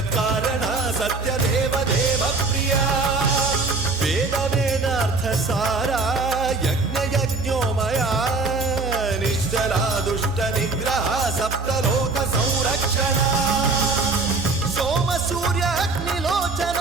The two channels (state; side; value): quieter; left; 3.7 dB